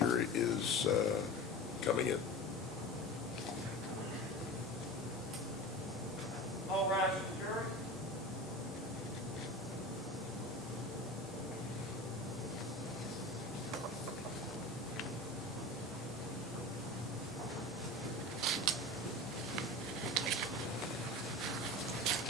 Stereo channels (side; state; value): both; normal; correlation 0.32